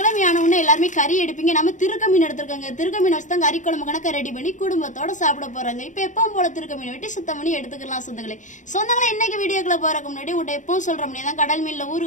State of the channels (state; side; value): late; right; 0.36 ms